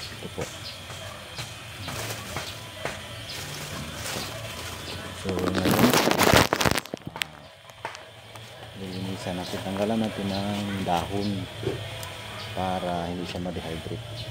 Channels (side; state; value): both; identical; correlation 1.00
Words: Ito po. So ngayon lilinisan natin, tanggalan natin ng dahon para hindi siya ma-dehydrate.